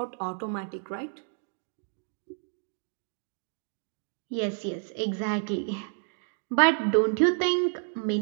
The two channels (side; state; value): left; silent; 58 dB below the other